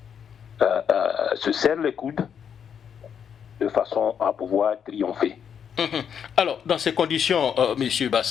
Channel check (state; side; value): quieter; right; 7.8 dB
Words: se serrent les coudes, de façon à pouvoir triompher. Alors, dans ces conditions, M.